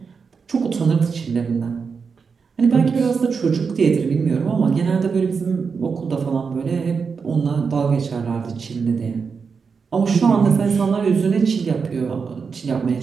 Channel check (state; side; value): quieter; left; 5.5 dB